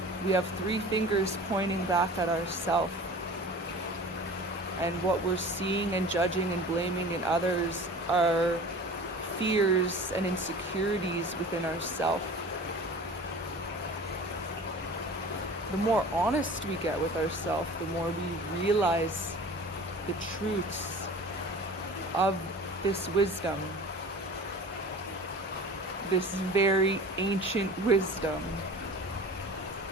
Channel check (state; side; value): normal; both; correlation 0.40